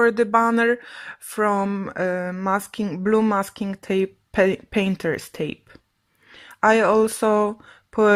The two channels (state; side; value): identical; both; correlation 1.00